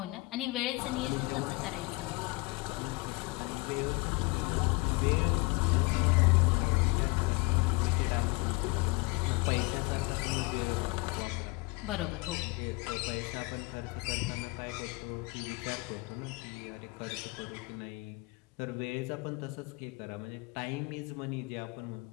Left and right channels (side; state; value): right; quieter; 25.7 dB